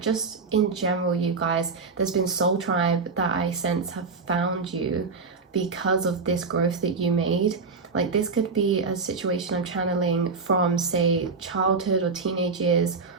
in general, you guys, there's been soul tribe that I sense have found you because of this growth that you made. Like this could be a situation I'm channeling from, say, childhood or teenage years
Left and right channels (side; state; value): left; quieter; 4.6 dB